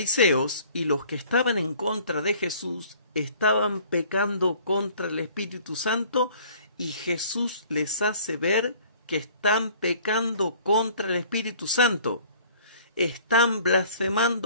y los que estaban en contra de Jesús estaban pecando contra el Espíritu Santo, y Jesús les hace ver que están pecando contra el Espíritu Santo. Están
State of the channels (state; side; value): inverted; both; correlation -0.53